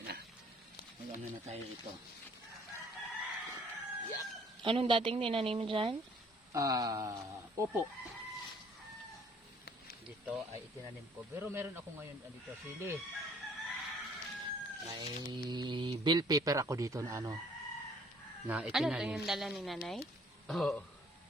na. Mag-ano na tayo ito. Yap. Anong dating tinanim dyan? Opo. Dito ay itinanim ko. Pero meron ako ngayon dito sili. May bill paper ako dito na ano na Ano itinanim. to yung dala ni nanay? Oo.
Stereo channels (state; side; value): normal; both; correlation 0.59